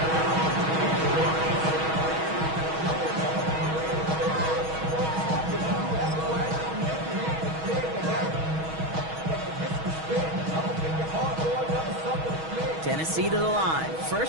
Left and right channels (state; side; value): late; left; 6.3 ms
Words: Tennessee to the line.